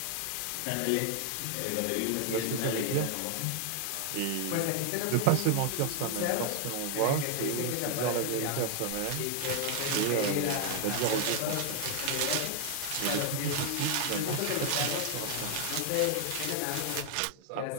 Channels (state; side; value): different; both; correlation 0.00